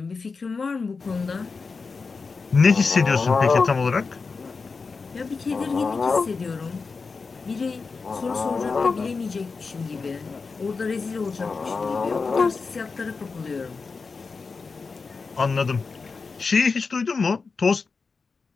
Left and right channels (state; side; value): quieter; right; 4.6 dB